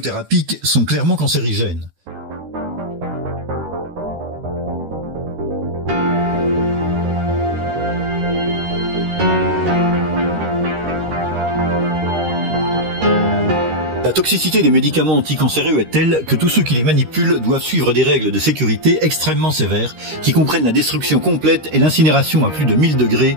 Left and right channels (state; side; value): late; left; 13 ms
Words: sont clairement cancérigènes. La toxicité des médicaments anticancéreux est telle que tous ceux qui les manipulent doivent suivre des règles de sécurité extrêmement sévères qui comprennent la destruction complète et l'incinération à plus de 1000 degrés